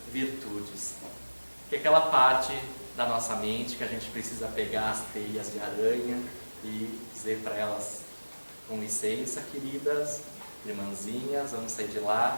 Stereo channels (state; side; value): inverted; both; correlation -1.00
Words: virtudes, que é aquela parte da nossa mente que a gente precisa pegar as teias de aranha e dizer para elas: com licença, queridas, irmãzinhas, vamos sair de